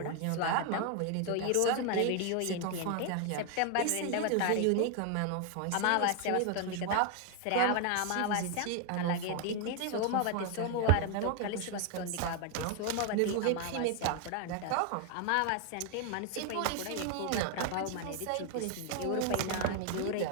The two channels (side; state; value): both; different; correlation 0.01